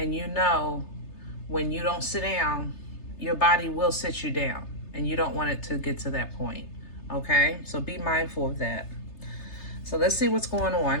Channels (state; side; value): late; right; 3.3 ms